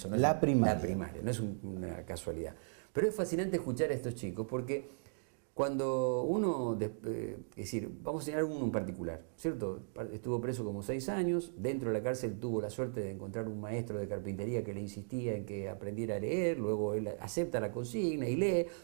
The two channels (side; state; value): left; silent; digital silence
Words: no es la primaria, no es una casualidad. Pero es fascinante escuchar a estos chicos porque cuando uno, es decir, vamos a señalar uno en particular, ¿cierto? Estuvo preso como 6 años, dentro de la cárcel tuvo la suerte de encontrar un maestro de carpintería que le insistía en que aprendiera a leer, luego él acepta la consigna y lee.